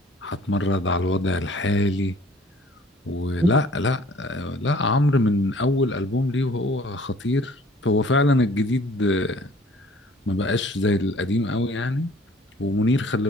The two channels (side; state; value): both; normal; correlation 0.53